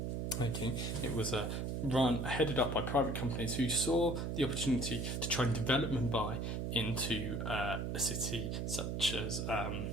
It was headed up by private companies who saw the opportunity to try and develop Mumbai into a city such as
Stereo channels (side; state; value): right; noise; hum, 2 dB below the sound